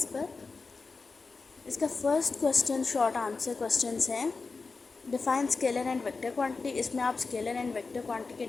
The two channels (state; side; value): quieter; right; 4.3 dB